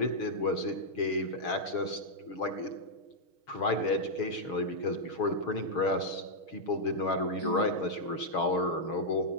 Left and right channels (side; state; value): right; late; 6.4 ms